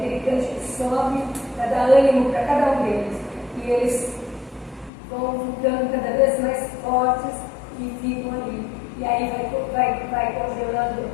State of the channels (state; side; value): drops out; right; at 4.9 s